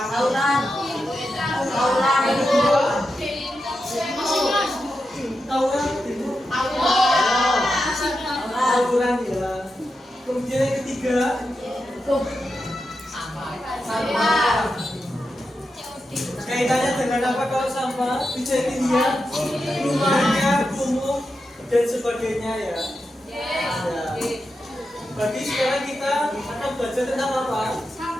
Aulan. Aulan. Yang kedua? Tauran. Tauran ya. Kemudian yang ketiga? Sampah. Kaitannya dengan apa kalau sampah? Bisa dilihat rumahnya, kumuh dan sebagainya ya. Ya. Bagi sekarang kita akan belajar tentang apa?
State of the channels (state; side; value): normal; both; correlation 0.88